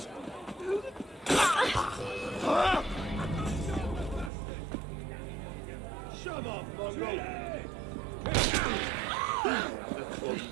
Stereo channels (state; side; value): drops out; left; at 4.3 s